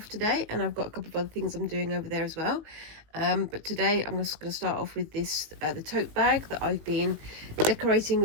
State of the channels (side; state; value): left; late; 19 ms